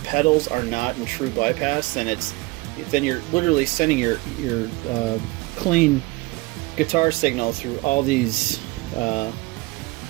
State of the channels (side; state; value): left; quieter; 23.1 dB